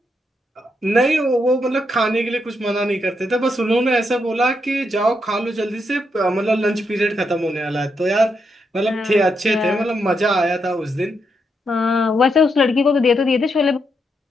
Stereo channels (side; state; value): both; normal; correlation 0.80